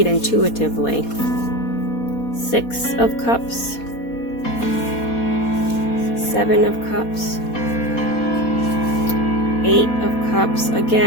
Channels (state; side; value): late; right; 4.2 ms